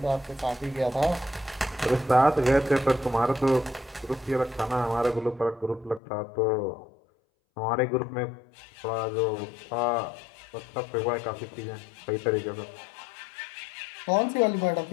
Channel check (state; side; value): drops out; right; at 6.0 s